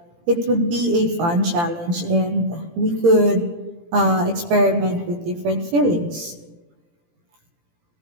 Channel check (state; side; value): late; left; 18 ms